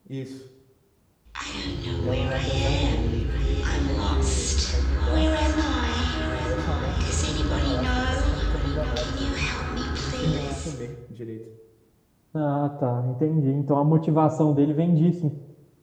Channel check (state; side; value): identical; both; correlation 1.00